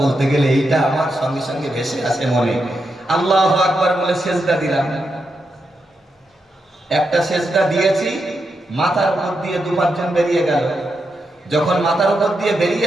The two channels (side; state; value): both; normal; correlation 0.85